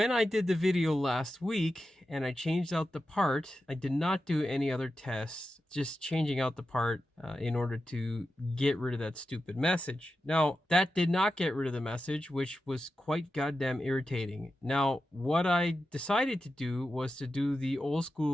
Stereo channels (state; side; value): normal; both; correlation 0.91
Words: I did the video last week and I changed out the part, I did not do any other tests, just changing out the part in order to get rid of that stupid message. Now, that did not get rid of the message, which was quite goddamn irritating. Now, what I decided to do was to do the old